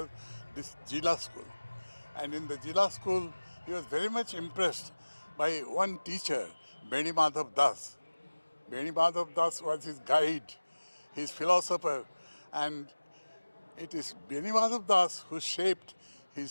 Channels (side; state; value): both; inverted; correlation -1.00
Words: this Jilla School. And in the Jilla School he was very much impressed by one teacher, Beni Madhav Das. Beni Madhav Das was his guide, his philosopher, and it is Beni Madhav Das who shaped